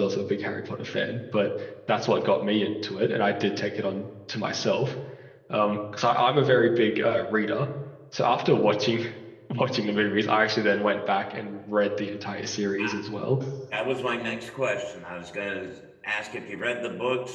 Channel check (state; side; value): identical; both; correlation 1.00